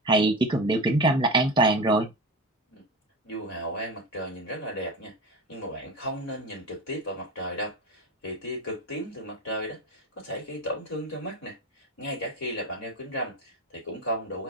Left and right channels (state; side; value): normal; both; correlation 0.25